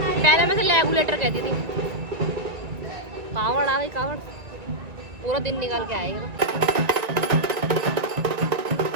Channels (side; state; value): left; late; 1.9 ms